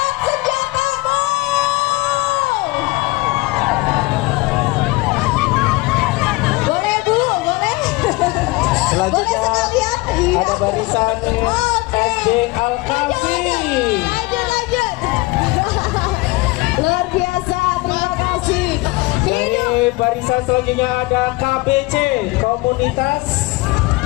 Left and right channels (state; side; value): quieter; right; 22.8 dB